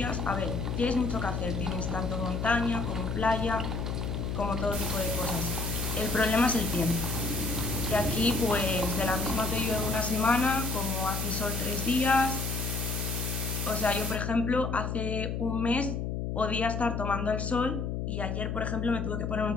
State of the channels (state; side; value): noise; left; hum, 2 dB below the sound